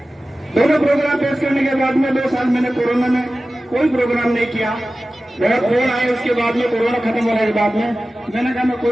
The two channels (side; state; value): both; normal; correlation 0.95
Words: दोनों प्रोग्राम पेश करने के बाद में 2 साल मैंने कोरोना में कोई प्रोग्राम नहीं किया। बहुत फोन आए उसके बाद में, कोरोना खत्म होने के बाद में मैंने कहा मैं कोई